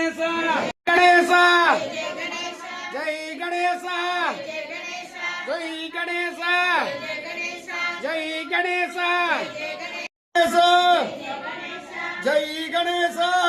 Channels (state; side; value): identical; both; correlation 1.00